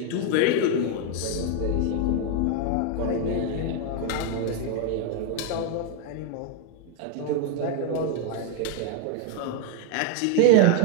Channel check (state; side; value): different; both; correlation 0.01